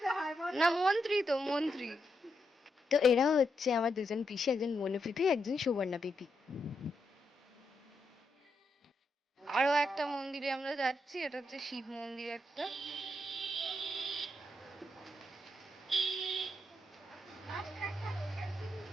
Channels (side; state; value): both; normal; correlation 0.82